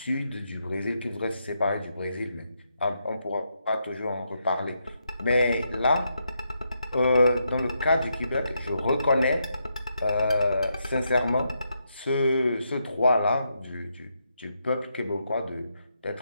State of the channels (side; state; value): both; inverted; correlation -0.81